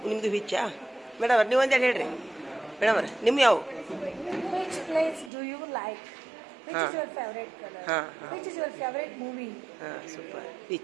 ವಿಚ್ಚಾ ಮೇಡಮ್ ಅವ್ರಿ ನೀವೊಂದು ಹೇಳ್ರಿ ಮೇಡಮ್ ಅವ್ರಿ ನಿಮ್ಮ ಯಾವ Which place do you like? Which Huh. is your favorite color? Huh. Which is your favorite movie? ಹಾಂ super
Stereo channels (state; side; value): drops out; left; at 5.3 s